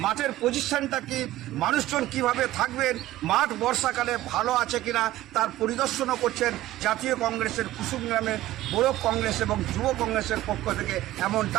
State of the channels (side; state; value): left; quieter; 15.4 dB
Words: মাঠের পজিশনটা কি, মানুষজন কিভাবে থাকবেন, মাঠ বর্ষাকালে ভালো আছে কিনা তার পরিদর্শনও করছেন জাতীয় কংগ্রেসের কুসুমগ্রামের ব্লক কংগ্রেস এবং যুব কংগ্রেসের পক্ষ থেকে,